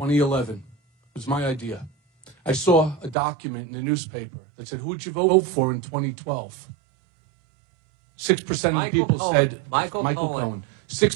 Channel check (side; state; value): left; drops out; at 3.2 s